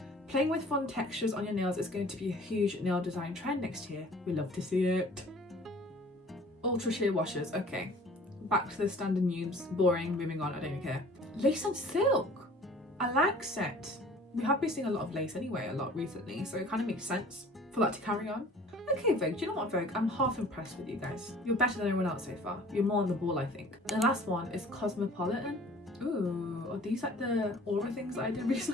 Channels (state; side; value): normal; both; correlation 0.49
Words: Playing with fun textures on your nails is going to be a huge nail design trend next year. We love to see it. Ultra sheer washes. Okay, back to the standard noobs. Boring. Moving on. I don't even care. Lace and silk. I like set. We have been seeing a lot of lace anyway, a lot recently, so it kind of makes sense for that to carry on. Okay, Vogue, do you know what, Vogue? I'm half impressed with you guys. You're better than everyone else so far. You're more on the ball, I think. The last one is Cosmopolitan. Ooh, are these like the aura things that I did